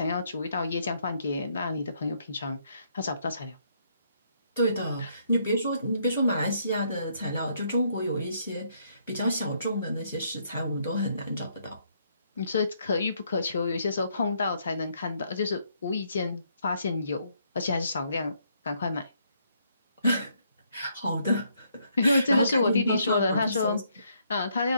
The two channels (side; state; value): both; inverted; correlation -0.71